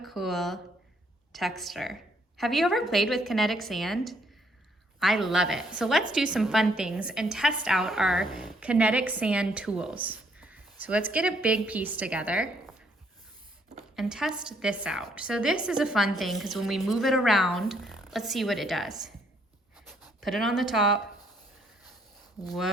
texture. Have you ever played with kinetic sand? I love it. So let's do some fun things and test out our kinetic sand tools. So let's get a big piece together and test this out. So this is a fun thing because when we move it around, let's see what it does. Put it on the top.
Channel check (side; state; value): both; normal; correlation 0.68